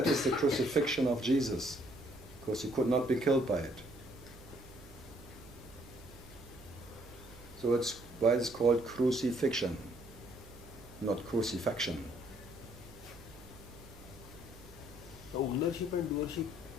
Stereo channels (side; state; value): right; noise; hum, 20 dB below the sound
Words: is the crucifixion of Jesus, because he could not be killed by it. So it's why it's called crucifixion, not crucifixion. Ownership and doership,